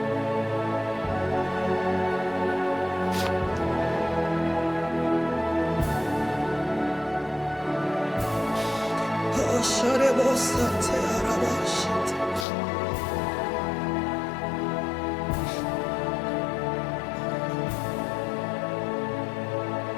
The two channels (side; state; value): right; drops out; at 12.5 s